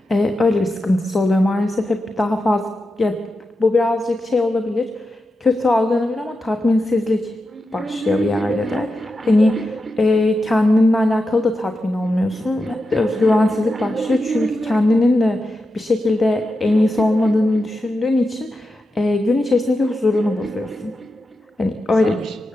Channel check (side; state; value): both; normal; correlation 0.89